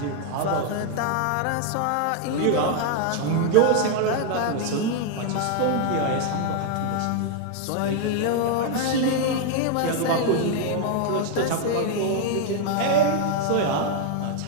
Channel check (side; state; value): both; different; correlation 0.00